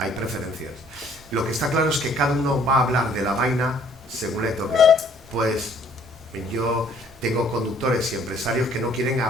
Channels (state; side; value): normal; both; correlation 0.60